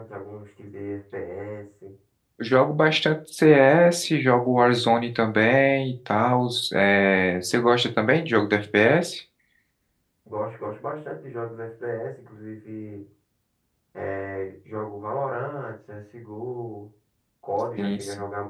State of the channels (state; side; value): identical; both; correlation 1.00